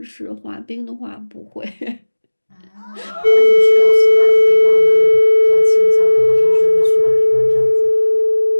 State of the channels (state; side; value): inverted; both; correlation -1.00